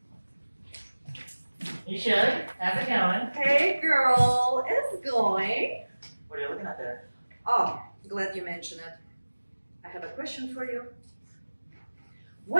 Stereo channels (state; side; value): inverted; both; correlation -1.00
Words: You should. How's it going? Hey girl, it's going. What are you looking at there? Oh, glad you mentioned it. I have a question for you.